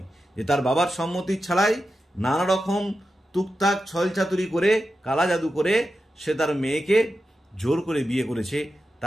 যে তার বাবার সম্মতি ছাড়াই নানা রকম টুকটাক ছলচাতুরি করে কালা জাদু করে সে তার মেয়েকে জোর করে বিয়ে করেছে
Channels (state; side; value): normal; both; correlation 0.90